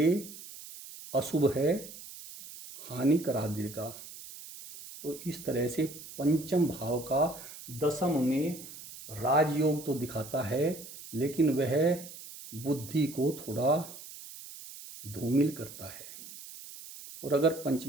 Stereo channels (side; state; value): right; noise; hiss, 14 dB below the sound